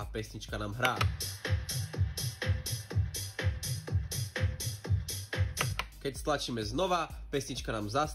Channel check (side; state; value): both; identical; correlation 1.00